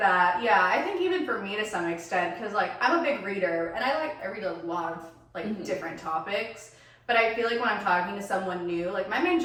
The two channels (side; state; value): both; identical; correlation 1.00